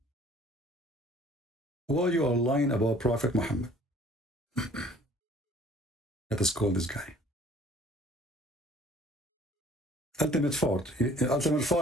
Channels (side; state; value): both; normal; correlation 0.54